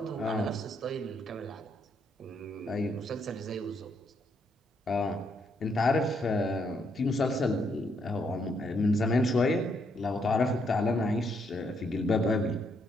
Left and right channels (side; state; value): both; normal; correlation 0.74